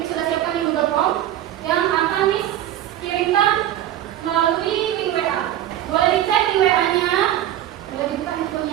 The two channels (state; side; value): quieter; left; 12.3 dB